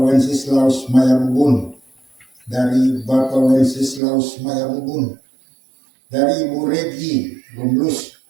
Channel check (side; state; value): left; drops out; at 4.0 s